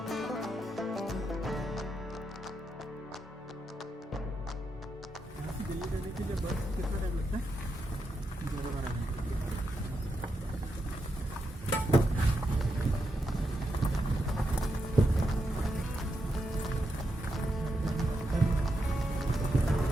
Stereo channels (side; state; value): both; normal; correlation 0.84